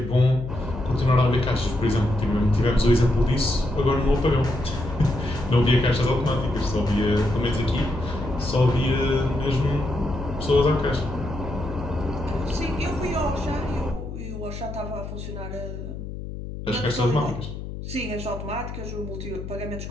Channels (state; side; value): noise; left; hum, 9 dB below the sound